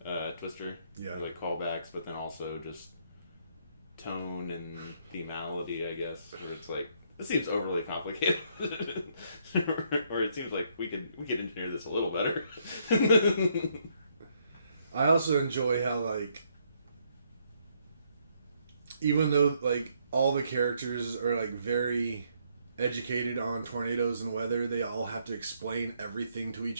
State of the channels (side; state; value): both; inverted; correlation -0.71